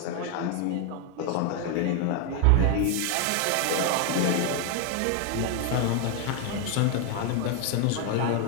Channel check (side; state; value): both; different; correlation 0.01